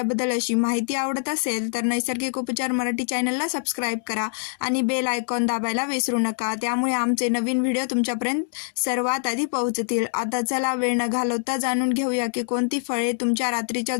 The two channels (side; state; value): right; silent; digital silence